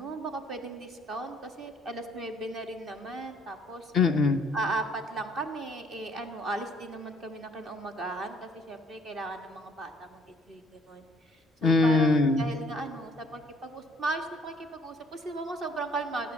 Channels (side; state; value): both; normal; correlation 0.62